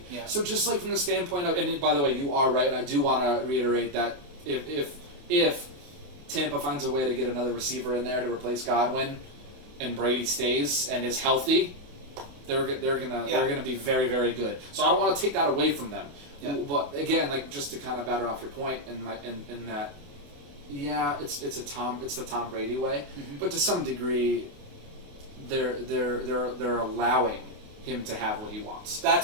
Yeah. So just like from the standpoint of, and by the way, you are right, and I do want to reiterate that if Tampa finds a way to get another receiver in there to replace Godwin, and Brady stays and is healthy, they're gonna be very, very good. So I don't want to take that away from them. Yeah. But again, like just to kind of batter off your point in that. Yeah, it's the Tom Brady way, but to some degree, they're allowing him to have what he wants.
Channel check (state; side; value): late; left; 28 ms